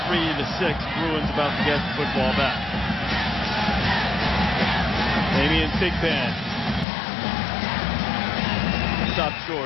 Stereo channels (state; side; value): drops out; right; at 6.9 s